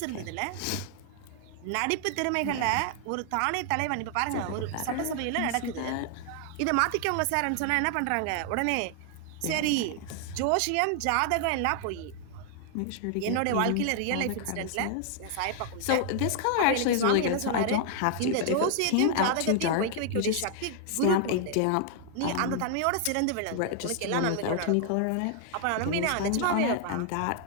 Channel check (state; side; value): different; both; correlation 0.00